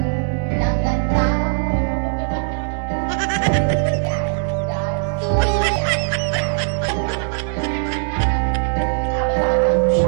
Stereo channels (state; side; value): silent; left; digital silence